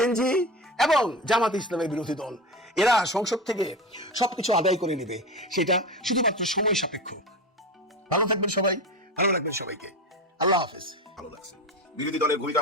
এবং জামাত ইসলামের বিরোধী দল। এরা সংসদ থেকে সবকিছু আদায় করে নেবে, সেটা শুধুমাত্র সময় সাপেক্ষ। ভালো থাকবেন সবাই, ভালো রাখবেন সবাইকে। আল্লাহ হাফেজ। ভালো লাগছে, বিরোধী দলের ভূমিকা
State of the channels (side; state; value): both; normal; correlation 0.25